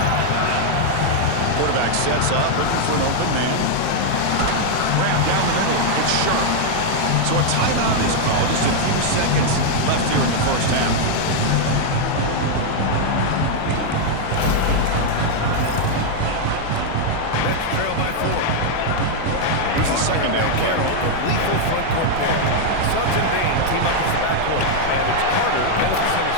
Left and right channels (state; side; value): different; both; correlation 0.00